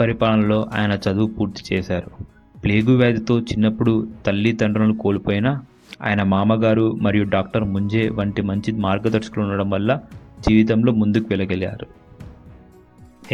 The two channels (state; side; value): identical; both; correlation 1.00